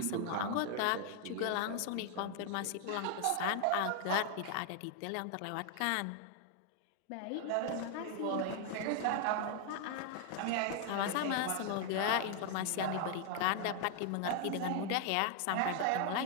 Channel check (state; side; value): different; both; correlation 0.00